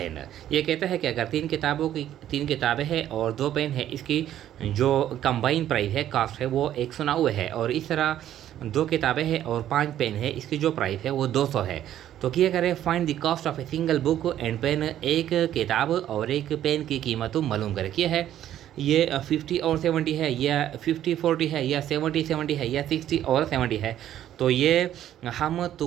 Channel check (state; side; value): quieter; left; 11.7 dB